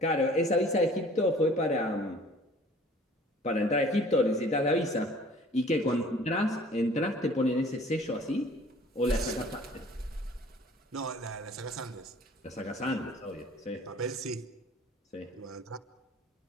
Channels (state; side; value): normal; both; correlation 0.51